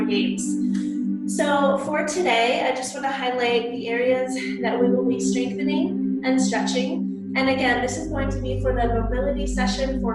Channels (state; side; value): identical; both; correlation 1.00